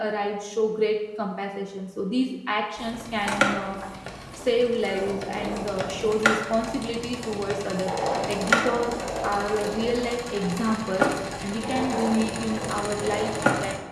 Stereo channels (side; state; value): both; identical; correlation 1.00